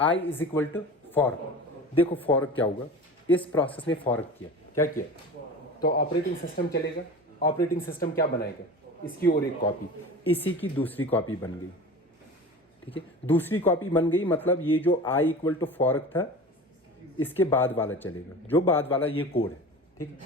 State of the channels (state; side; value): normal; both; correlation 0.35